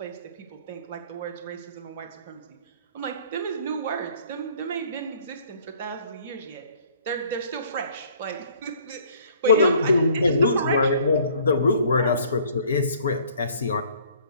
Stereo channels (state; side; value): inverted; both; correlation -0.57